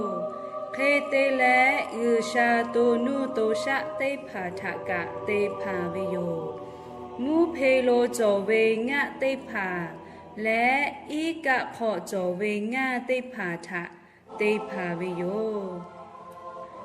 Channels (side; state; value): both; identical; correlation 1.00